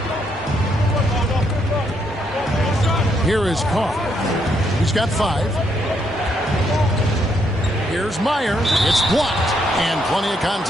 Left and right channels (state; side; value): normal; both; correlation 0.75